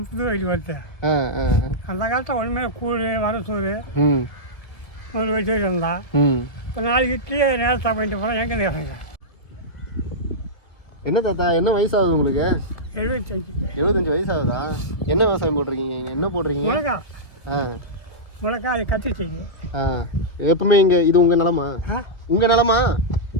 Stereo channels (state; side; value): late; right; 1.8 ms